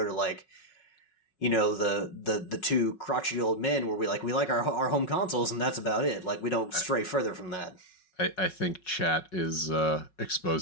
are like, the two crotchety old men where we like our home consoles and that's about it. Like, we don't stray further from that. I think chat is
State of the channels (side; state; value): right; late; 5.4 ms